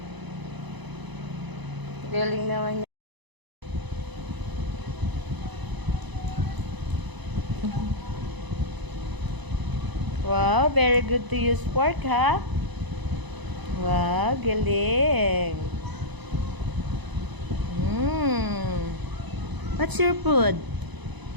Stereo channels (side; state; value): left; late; 1.0 ms